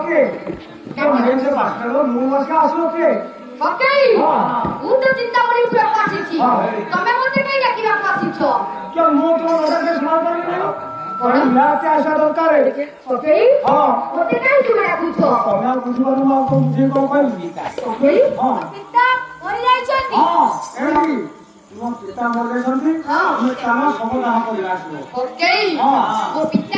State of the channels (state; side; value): identical; both; correlation 1.00